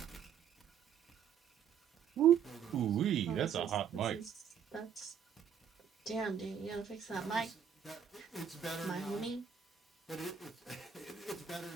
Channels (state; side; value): quieter; left; 7.9 dB